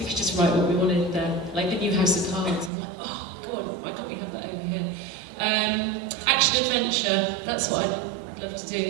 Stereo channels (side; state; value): left; drops out; at 2.7 s